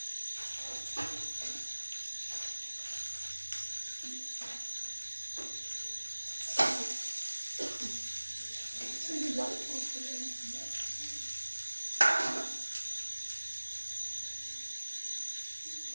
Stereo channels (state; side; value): inverted; both; correlation -1.00